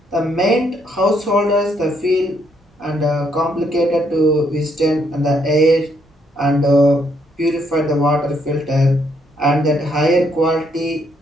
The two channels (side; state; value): both; normal; correlation 0.72